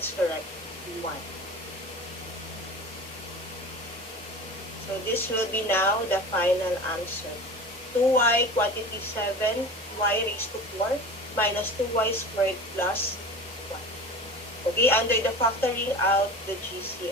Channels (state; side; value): normal; both; correlation 0.35